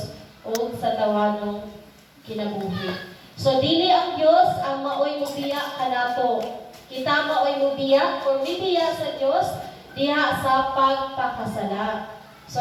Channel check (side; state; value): both; identical; correlation 1.00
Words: o sa tawanong kinabuhi. So dili ang Dios ang maoy mubiya kanato. Kita maoy mubiya or mibiya sa Dios diha sa pagpakasala.